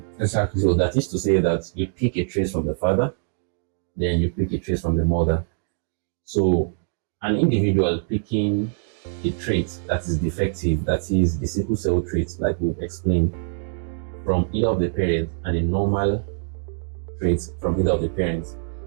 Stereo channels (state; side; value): silent; left; digital silence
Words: Exactly. So that is to say that you pick a trace from the father, then you pick a trace from the mother. So an individual picking a trait that is defective, that is the sickle cell trait, like we've explained, from either of the parents, and a normal trait from either of the parents,